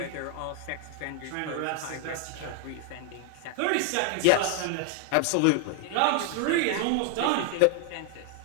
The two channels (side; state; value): both; different; correlation 0.00